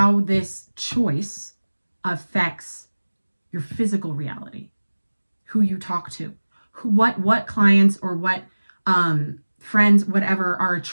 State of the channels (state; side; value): inverted; both; correlation -1.00